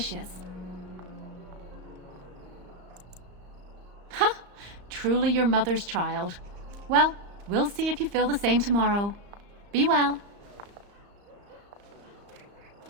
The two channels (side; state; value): left; late; 35 ms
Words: Huh! Truly your mother's child. Well, we'll see if you feel the same tomorrow. Be well.